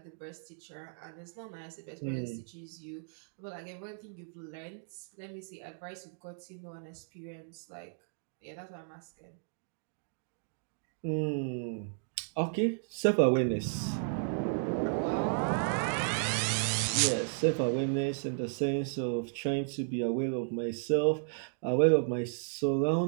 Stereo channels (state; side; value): silent; left; digital silence